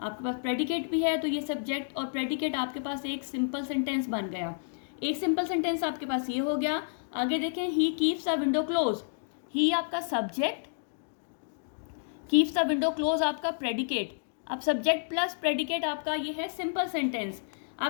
आपके पास प्रेडिकेट भी है, तो ये सब्जेक्ट और प्रेडिकेट आपके पास एक सिंपल सेंटेंस बन गया। एक सिंपल सेंटेंस आपके पास ये हो गया। आगे देखें, he keeps the window close, he आपका subject, keeps the window close आपका प्रेडिकेट। अब सब्जेक्ट प्लस प्रेडिकेट आपका ये है सिंपल सेंटेंस।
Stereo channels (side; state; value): right; silent; digital silence